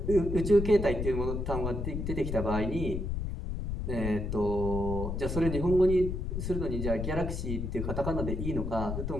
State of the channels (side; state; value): left; noise; rumble, 3 dB below the sound